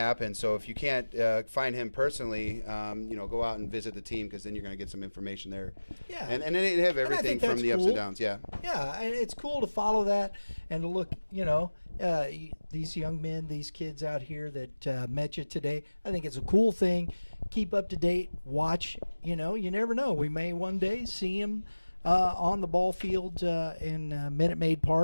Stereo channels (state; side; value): inverted; both; correlation -1.00